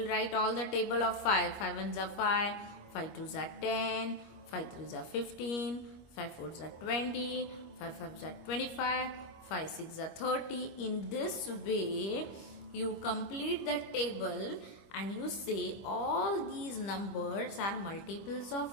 write all the table of 5. 5 ones are 5, 5 twos are 10, 5 threes are 15, 5 fours are 20, 5 fives are 25, 5 6 are 30. In this way, you complete the table and you say all these numbers are multiples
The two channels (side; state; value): right; late; 25 ms